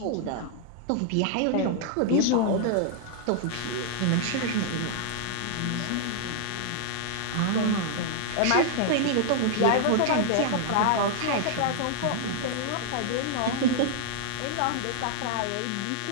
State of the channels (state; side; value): different; both; correlation 0.00